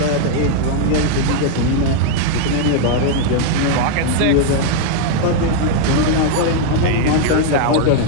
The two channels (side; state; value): both; different; correlation 0.00